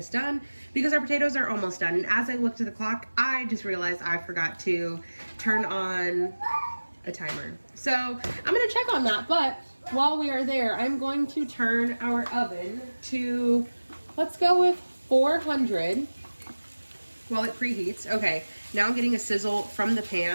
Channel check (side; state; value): both; inverted; correlation -1.00